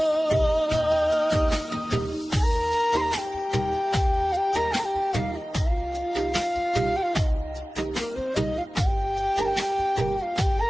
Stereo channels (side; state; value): both; normal; correlation 0.97